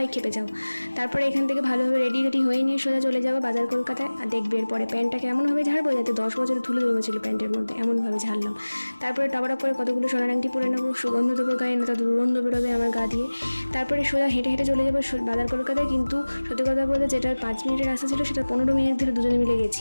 খেপে যাও। তারপরে এখান থেকে ভালোভাবে রেডি হয়ে নিয়ে সোজা চলে যাবো বাজার কলকাতায়। আর দেখবে এরপরে প্যান্টটা কেমনভাবে ঝাড়বো যাতে 10 বছরের ধুলো জমেছিল প্যান্টের মধ্যে, এমনভাবে ঝাড়লাম। তারপরে টপাটপ করে কতগুলো সোনার আংটি পরে নেবো, সুগন্ধ দেবো গায়ে, না তো দুর্গন্ধ বেরোবে আমার গা দিয়ে। তারপরে সোজা হেঁটে হেঁটে চলে যাবো বাজার কলকাতায়। কিন্তু সত্যি কথা বলতে যেটার 5 মিনিটের রাস্তা ছিল সেটা 15 মিনিট ধরে দুজনে মিলে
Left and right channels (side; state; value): both; inverted; correlation -1.00